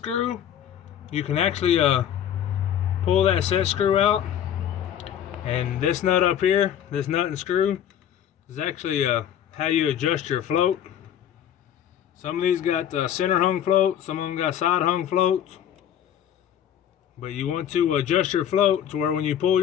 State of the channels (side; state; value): right; quieter; 10.0 dB